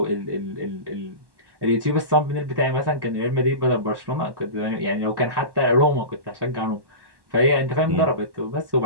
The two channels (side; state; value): left; late; 1.1 ms